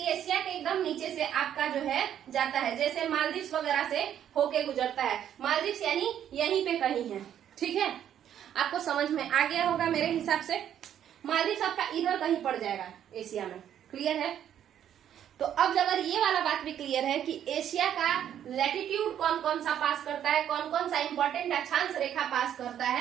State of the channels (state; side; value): quieter; left; 10.1 dB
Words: एशिया के एकदम नीचे से आपका जो है जाता है, जैसे मालदीव्स वगैरह से होके गुजरता है। मालदीव्स यानी यहीं पे कहीं है, ठीक है। आपको समझ में आ गया होगा मेरे हिसाब से। मालदीव्स आपका इधर कहीं पड़ जाएगा एशिया में, क्लियर है। तो अब अगर ये वाला बात भी क्लियर है कि एशिया का लैटिट्यूड कौन कौन सा पास करता है, कौन कौन सा इंपॉर्टेंट अक्षांश रेखा पास करता